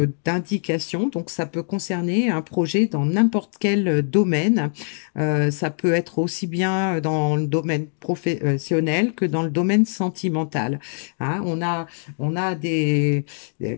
donc ça peut concerner un projet dans n'importe quel domaine. Ça peut être aussi bien dans le domaine professionnel que dans le domaine sentimental, hein. On a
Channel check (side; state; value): right; silent; digital silence